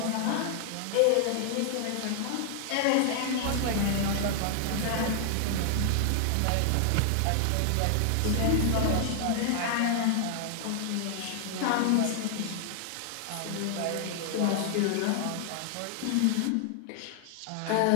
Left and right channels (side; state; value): both; different; correlation 0.00